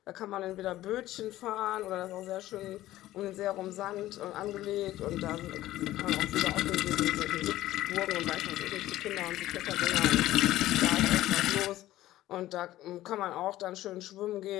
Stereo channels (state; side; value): quieter; right; 15.1 dB